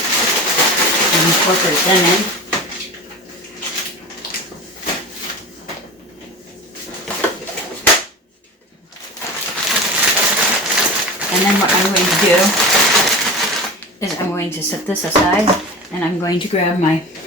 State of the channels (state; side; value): normal; both; correlation 0.31